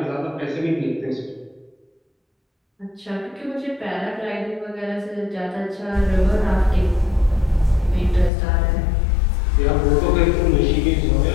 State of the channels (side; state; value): right; drops out; at 8.3 s